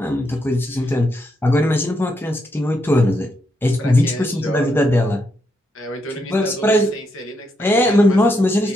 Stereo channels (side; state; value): both; normal; correlation 0.80